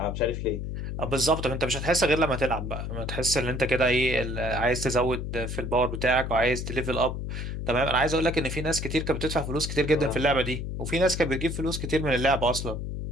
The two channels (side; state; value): left; noise; hum, 5 dB below the sound